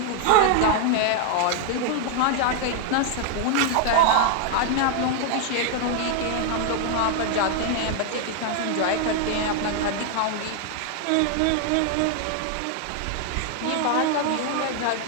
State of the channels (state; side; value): different; both; correlation 0.00